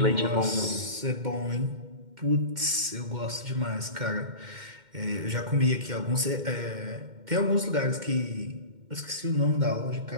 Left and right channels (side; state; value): left; late; 2.1 ms